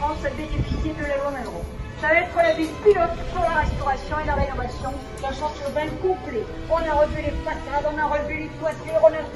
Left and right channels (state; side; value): identical; both; correlation 1.00